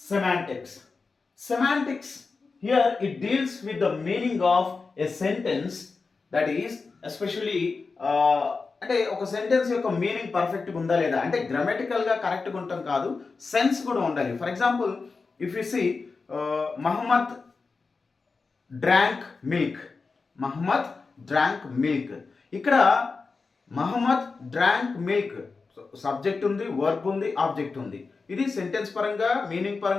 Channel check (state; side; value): quieter; right; 4.4 dB